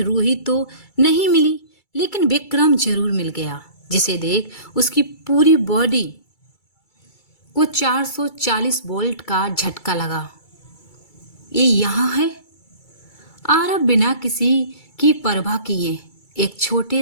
रूही तो नहीं मिली, लेकिन विक्रम जरूर मिल गया, जिसे देख उसकी पूरी बॉडी को 440 वोल्ट का झटका लगा। ये यहाँ है। आरब बिना किसी की परवाह किए एक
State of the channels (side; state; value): right; late; 2.3 ms